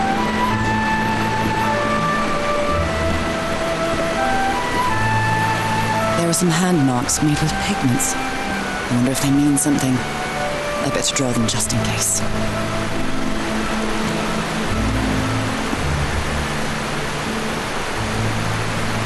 There are some hand marks made with pigments. I wonder if they mean something. I better draw them just in case.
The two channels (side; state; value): both; identical; correlation 1.00